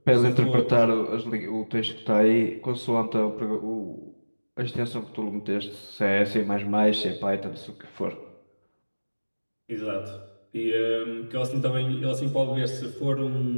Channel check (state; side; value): inverted; both; correlation -1.00